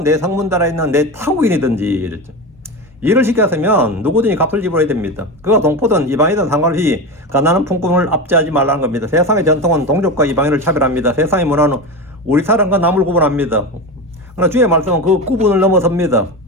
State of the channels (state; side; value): normal; both; correlation 0.22